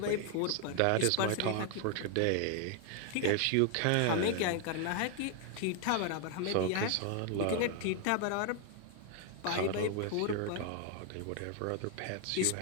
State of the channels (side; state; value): both; different; correlation 0.00